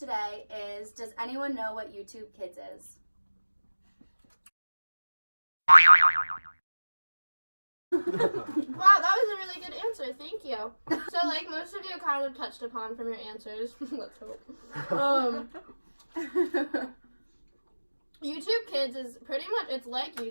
is, does anyone know what YouTube Kids is? Wow, that was a really good answer. Thank you. So, like most of you kind of touched upon from your answers. Let's hope. YouTube Kids is pretty much, it's like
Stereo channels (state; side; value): inverted; both; correlation -1.00